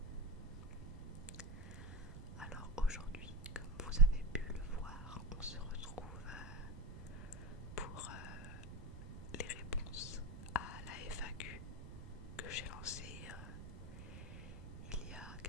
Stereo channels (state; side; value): noise; right; rumble, 10 dB below the sound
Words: Alors aujourd'hui, comme vous avez pu le voir, on se retrouve pour les réponses à la FAQ que j'ai lancée il y a